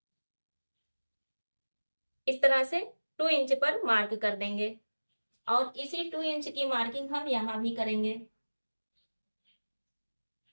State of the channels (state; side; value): inverted; both; correlation -1.00